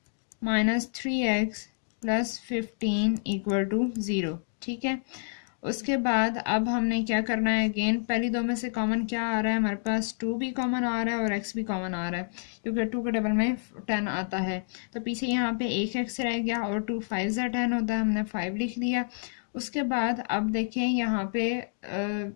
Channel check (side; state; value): right; silent; digital silence